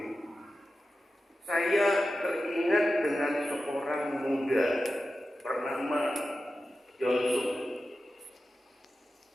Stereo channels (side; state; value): both; normal; correlation 0.93